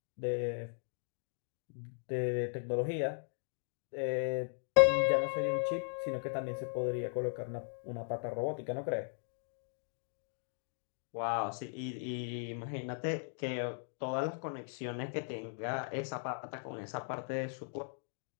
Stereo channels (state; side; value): silent; right; digital silence